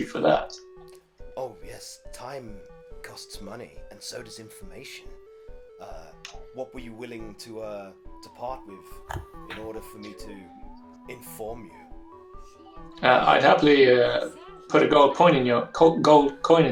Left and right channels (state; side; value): identical; both; correlation 1.00